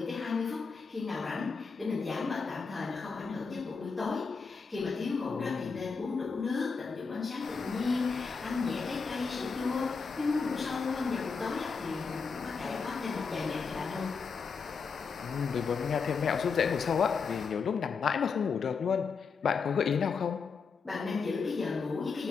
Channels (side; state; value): right; quieter; 5.2 dB